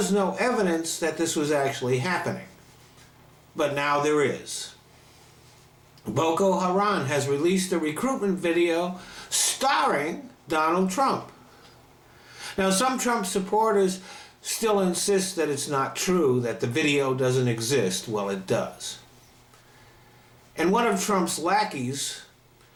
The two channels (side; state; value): both; identical; correlation 1.00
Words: no evidence that this was actually happening. But now there is. Boko Haram has released a recruitment video starring Donald Trump. Now, some Trump supporters still insist that it's not true, that the video doesn't exist. Well, it does. And one of Trump's lackeys